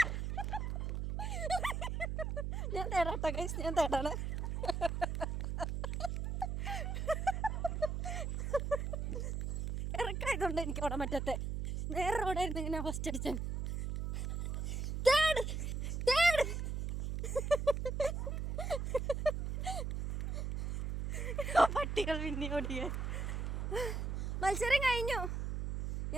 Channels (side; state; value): right; noise; hum, 2 dB below the sound